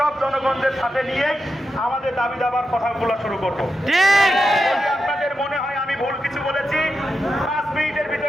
জনগণদের সাথে নিয়ে আমাদের দাবি দাবার কথাগুলো শুরু করবো। যদি আপনাদের মনে হয় আমি ভুল কিছু বলেছি, 5 মিনিটের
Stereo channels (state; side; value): normal; both; correlation 0.88